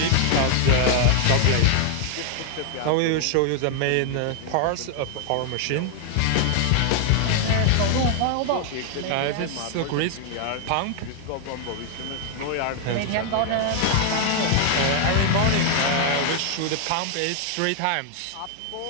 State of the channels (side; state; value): both; different; correlation 0.00